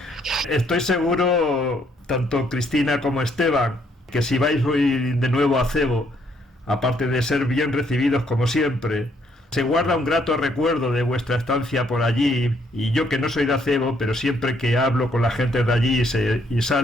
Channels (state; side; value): normal; both; correlation 0.69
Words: Estoy seguro, tanto Cristina como Esteban, que si vais hoy de nuevo a Acebo, aparte de ser bien recibidos como siempre, se guarda un grato recuerdo de vuestra estancia por allí. Y yo, que no soy de Acebo, pero siempre que hablo con la gente de allí y